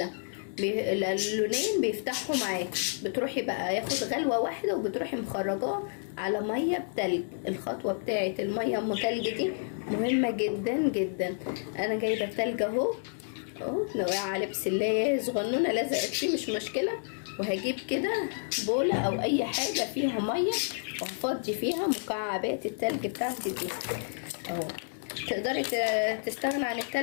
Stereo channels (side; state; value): right; silent; digital silence